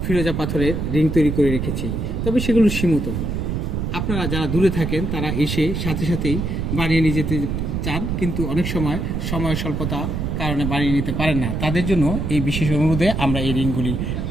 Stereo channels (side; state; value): right; noise; rumble, 2 dB below the sound